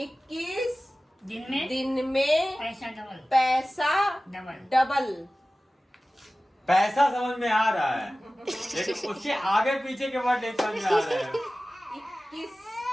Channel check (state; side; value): normal; both; correlation 0.97